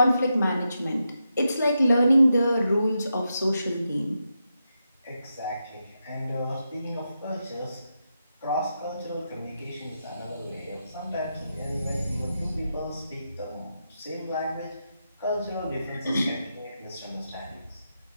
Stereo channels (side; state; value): both; inverted; correlation -0.86